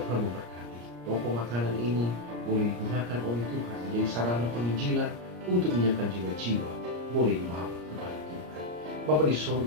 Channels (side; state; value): left; late; 34 ms